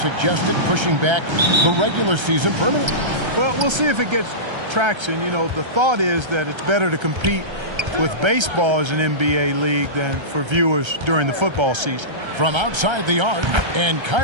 pushing back the regular season permanently. Well, we'll see if it gets traction. You know, the thought is that it's better to compete with baseball as an NBA league than for viewers during the football season. From outside the arc, and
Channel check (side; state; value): left; late; 1.3 ms